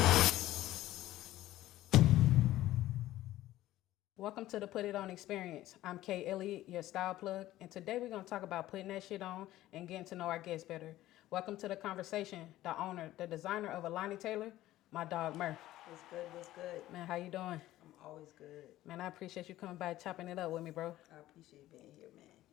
Welcome to the Put It On Experience. I'm Kay Elliott, your style plug, and today we're going to talk about putting that shit on and getting to know our guests better. Welcome to the conversation, the owner, the designer of Alani Taylor, my dog Murph. What's good? What's good? Man, how you doing? I'm always good. Man, I appreciate you coming by chopping it up with me, bro. I appreciate being here, man,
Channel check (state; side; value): quieter; right; 15.1 dB